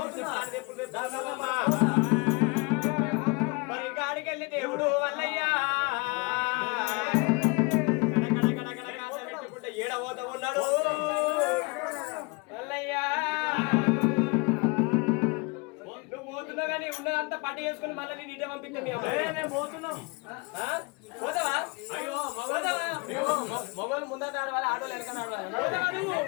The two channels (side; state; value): right; quieter; 29.1 dB